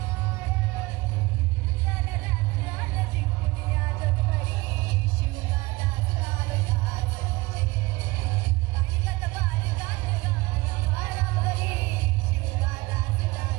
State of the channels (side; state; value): left; quieter; 21.8 dB